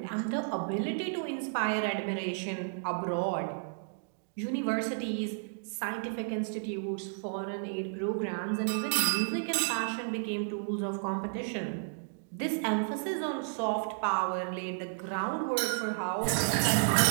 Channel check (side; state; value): left; silent; digital silence